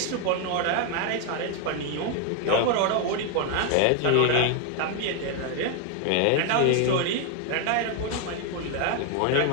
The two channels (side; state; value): both; different; correlation 0.01